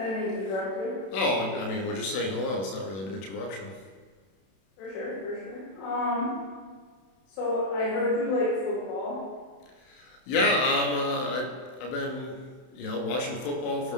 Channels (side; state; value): right; late; 31 ms